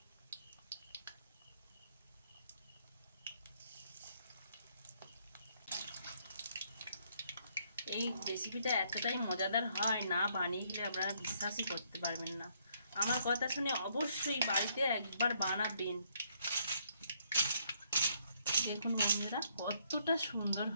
এই রেসিপিটা এতটাই মজাদার হয়, না বানিয়ে গেলে আপনারা বিশ্বাসই করতে পারবেন না। আমার কথা শুনে অবশ্যই বাড়িতে একবার বানাবেন। দেখুন বন্ধুরা কতটা সুন্দর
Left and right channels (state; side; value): inverted; both; correlation -0.70